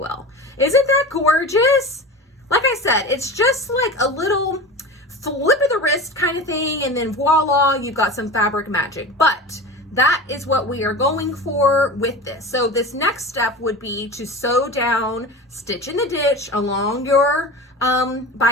Isn't that gorgeous? Like I said, it's just like a little flip of the wrist kind of thing, and then voila, you've got some fabric magic. But that is what we are going for with this. So this next step would be to sew down, stitch in the ditch along your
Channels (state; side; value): normal; both; correlation 0.31